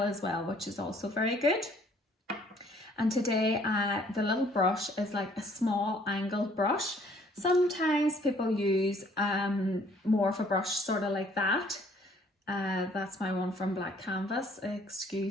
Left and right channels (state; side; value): normal; both; correlation 0.60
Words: as well, which is also very good. And today the little brush is like a small angled brush. Sometimes people use more of a brush sort of like that. That's my one from Black Canvas.